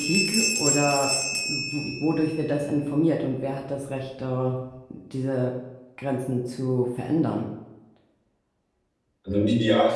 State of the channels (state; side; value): identical; both; correlation 1.00